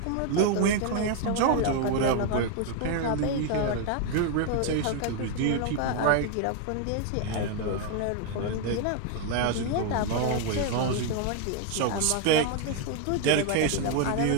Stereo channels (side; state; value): both; different; correlation 0.01